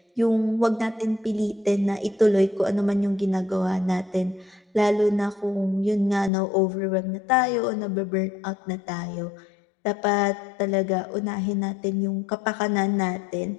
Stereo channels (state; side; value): drops out; right; at 6.3 s